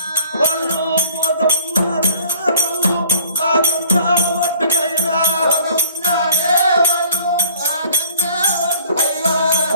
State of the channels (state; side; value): inverted; both; correlation -0.54